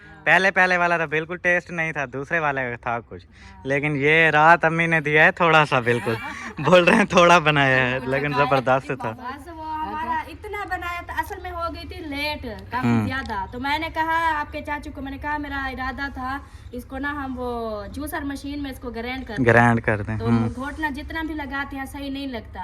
पहले वाला तो बिल्कुल टेस्ट नहीं था, दूसरे वाले का था कुछ, लेकिन ये रात अम्मी ने दिया है थोड़ा सा, बिल्कुल बोल रहे हैं थोड़ा बनाया है, लेकिन जबरदस्त था। बस वो हमारा इतना बनाया था, असल में हो गई थी लेट काफी ज्यादा। तो मैंने कहा आपके चाचू को, मैंने कहा मेरा इरादा था इसको ना हम वो जूसर मशीन में इसको ग्राइंड कर दें। तो घोटना जितना भी लगाते हैं सही नहीं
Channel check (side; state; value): both; identical; correlation 1.00